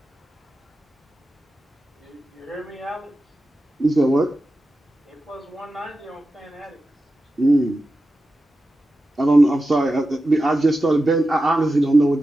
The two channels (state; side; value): normal; both; correlation 0.92